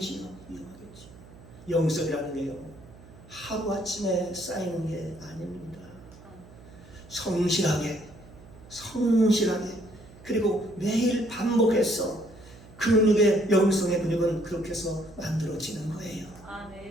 영성이라는 게요, 하루아침에 쌓이는 게 아닙니다. 성실하게 그리고 매일 반복해서 근육의 영성의 근육은 그렇게 해서 만들어지는 거예요.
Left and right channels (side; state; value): right; noise; hum, 21 dB below the sound